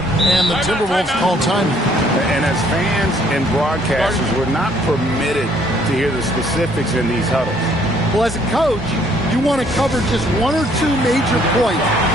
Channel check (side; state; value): both; normal; correlation 0.63